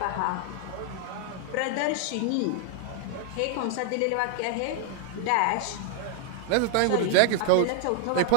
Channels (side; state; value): both; different; correlation -0.01